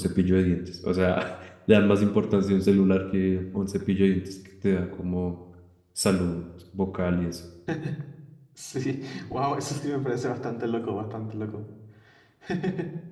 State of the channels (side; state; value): both; identical; correlation 1.00